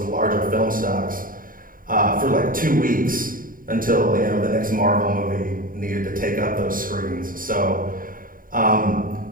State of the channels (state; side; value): late; left; 0.41 ms